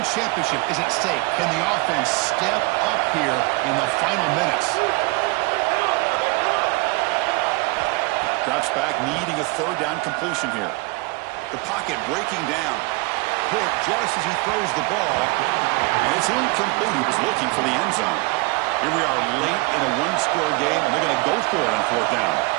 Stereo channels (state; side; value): quieter; left; 25.1 dB